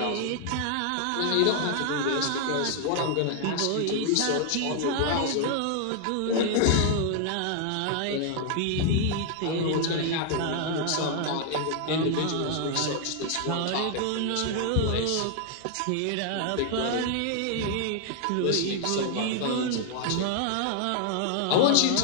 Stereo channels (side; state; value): both; different; correlation 0.00